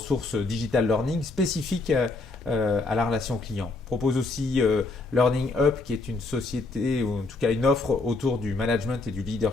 digital learning spécifiques à la relation client. On propose aussi Learning Up, qui est une société, ou en tout cas une offre autour du management et du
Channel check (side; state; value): right; quieter; 3.4 dB